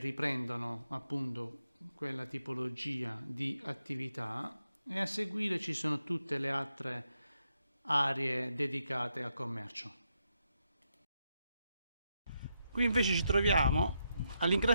appunto quella tipologia di attività, e a seguire ci sono tutte le altre aree dedicate al commercio. Qui invece ci troviamo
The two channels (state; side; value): inverted; both; correlation -0.82